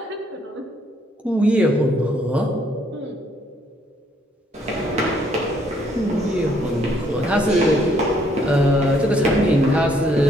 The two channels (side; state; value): both; normal; correlation 0.68